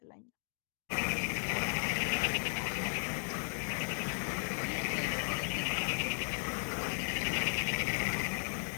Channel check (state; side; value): silent; right; 54 dB below the other